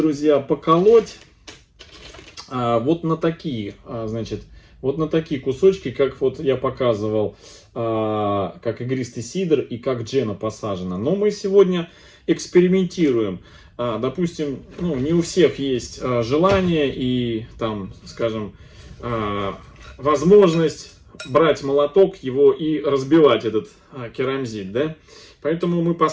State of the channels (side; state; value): both; identical; correlation 1.00